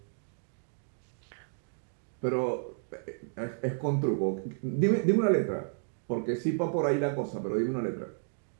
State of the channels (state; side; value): silent; left; digital silence